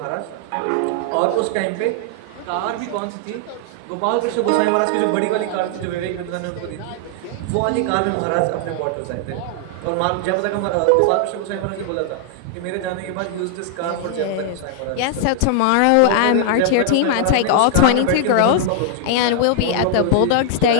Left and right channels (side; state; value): both; different; correlation -0.01